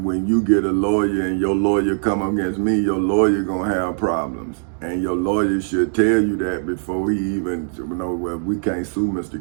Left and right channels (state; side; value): silent; left; digital silence